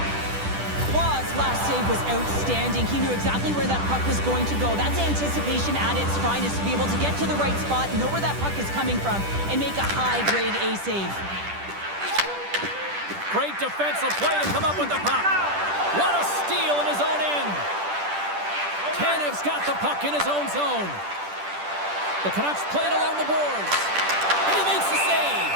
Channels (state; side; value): late; left; 10 ms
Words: Wall's last save was outstanding. He knew exactly where that puck was going to go. That's anticipation at its finest, to be able to get to the right spot, know where that puck is coming from, and make a high-grade A save. Great defensive play to come up with the puck. What a steal in his own end. Tanev's got the puck in his own zone. The Canucks play it along the boards. And he makes the save.